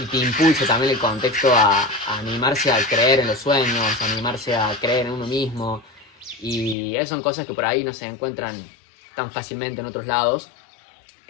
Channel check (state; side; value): drops out; right; at 6.8 s